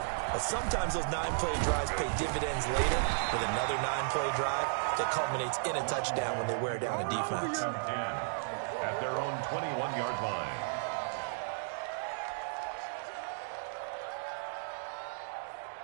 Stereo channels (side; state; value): left; silent; digital silence